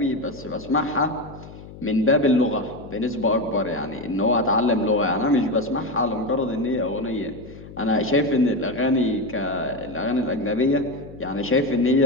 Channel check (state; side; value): noise; left; hum, 16 dB below the sound